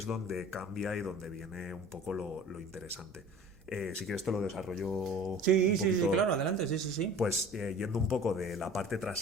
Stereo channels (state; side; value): normal; both; correlation 0.43